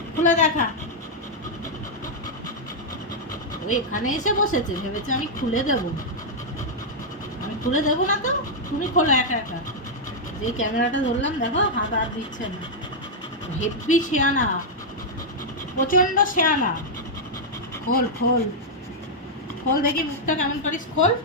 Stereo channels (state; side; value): normal; both; correlation -0.04